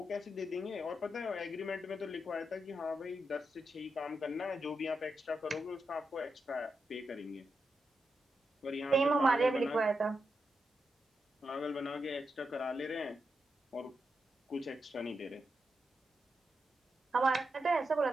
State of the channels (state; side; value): normal; both; correlation 0.86